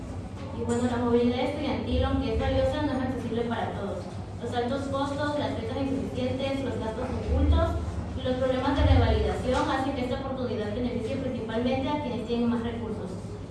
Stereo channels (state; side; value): identical; both; correlation 1.00